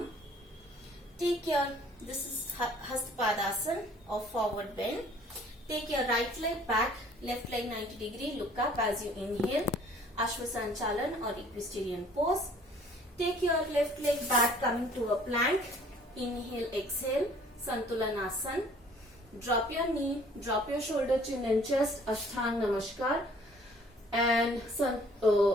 This is Hastpadasana or forward bend. Take your right leg back, left leg 90 degree, look up as you inhale. Ashwasanchalan or equestrian pose. Take your left leg back, coming to a plank. Inhale, exhale, Santulanasana. Drop your knee, drop your shoulder, chin and chest, Ashtang Namaskar. And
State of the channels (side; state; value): both; normal; correlation 0.55